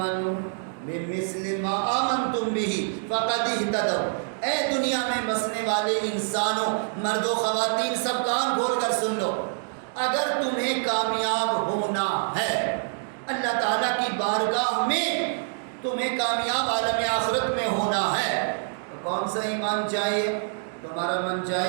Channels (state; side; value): silent; left; digital silence